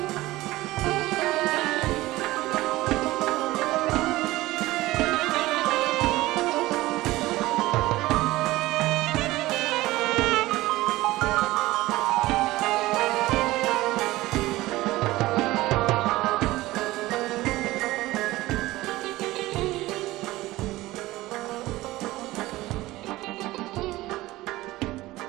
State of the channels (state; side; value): quieter; left; 18.1 dB